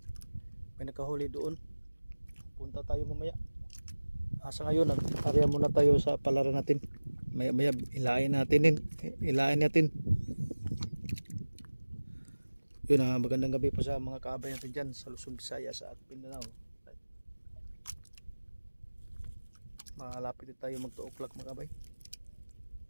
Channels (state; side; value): inverted; both; correlation -1.00